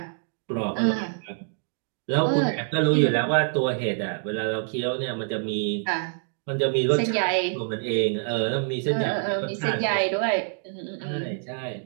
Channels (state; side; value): silent; left; digital silence